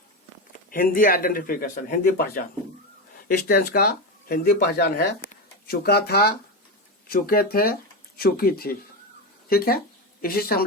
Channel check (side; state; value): both; normal; correlation 0.15